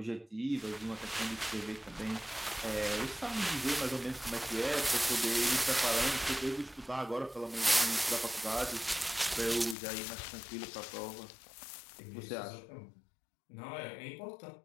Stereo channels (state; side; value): drops out; right; at 9.8 s